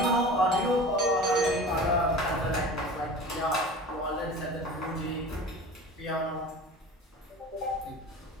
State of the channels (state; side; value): normal; both; correlation 0.38